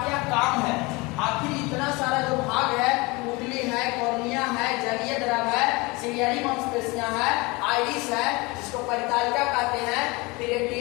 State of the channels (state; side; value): quieter; right; 24.9 dB